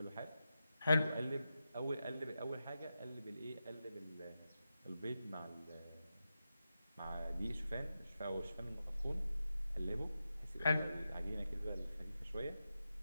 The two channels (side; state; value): both; inverted; correlation -0.90